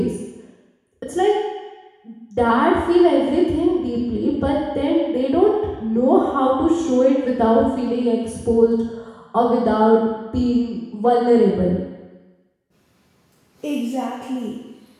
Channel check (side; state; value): both; identical; correlation 1.00